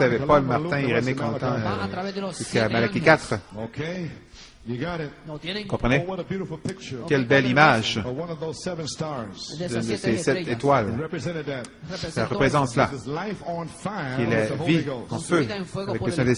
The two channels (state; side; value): identical; both; correlation 1.00